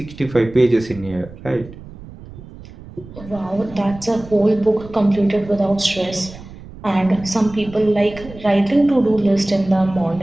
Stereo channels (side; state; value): right; noise; rumble, 17 dB below the sound